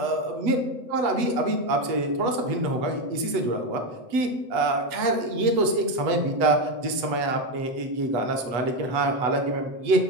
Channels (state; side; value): late; left; 8.2 ms